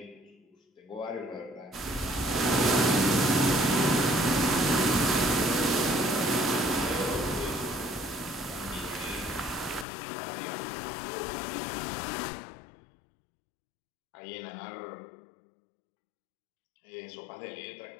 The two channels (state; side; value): drops out; right; at 9.9 s